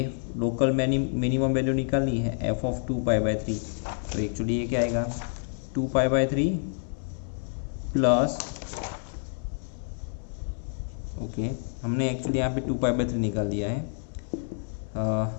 लोकल मिनिमम वैल्यू निकालनी है f ऑफ 2π/3, तो एक्चुअली ये क्या आएगा 2π/3 प्लस, ओके हमने एक्चुअली यहाँ पे 2π/3 निकाल दिया है,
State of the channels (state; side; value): silent; right; 57 dB below the other